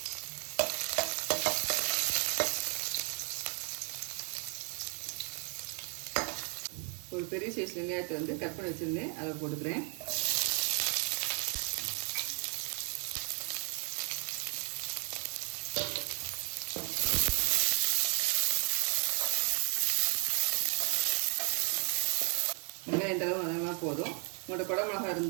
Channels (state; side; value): quieter; left; 39.0 dB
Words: ஒரு பெரிய சைஸ் வெங்காயத்தை கட் பண்ணி வச்சுருந்தேன், அதை போட்டுக்கிறேன். வெங்காயம் இந்த அளவு அதெல்லாம் போதும். உங்களோட குடை மிளகா